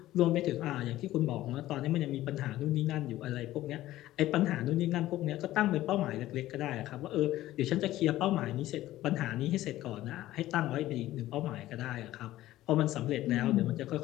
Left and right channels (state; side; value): quieter; right; 15.1 dB